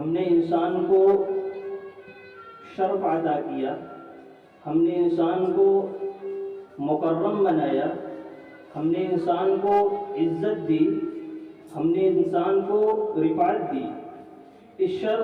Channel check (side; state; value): both; identical; correlation 1.00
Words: ہم نے انسان کو شرف عطا کیا، ہم نے انسان کو مکرم بنایا، ہم نے انسان کو عزت دی، ہم نے انسان کو رفعت دی۔ اس